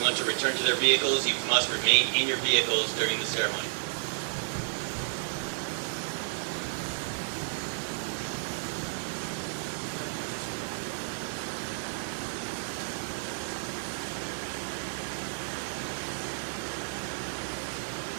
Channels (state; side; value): silent; left; digital silence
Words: to return to their vehicles. You must remain in your vehicles during the ceremony.